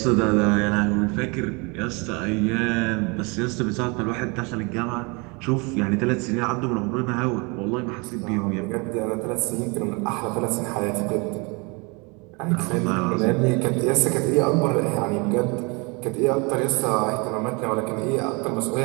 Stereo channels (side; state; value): left; quieter; 29.4 dB